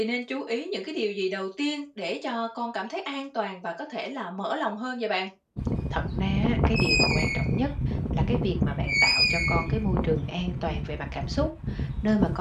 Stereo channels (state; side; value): identical; both; correlation 1.00